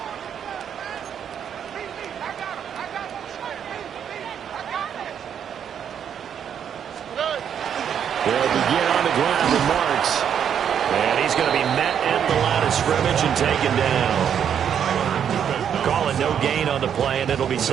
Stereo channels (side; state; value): left; quieter; 8.5 dB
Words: They'll begin on the ground with Marks. And he's going to be met at the line of scrimmage and taken down. Calling no gain on the play, and it'll be